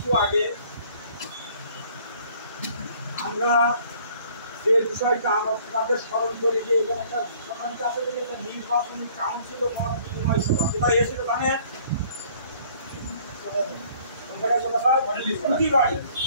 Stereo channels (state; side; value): inverted; both; correlation -0.57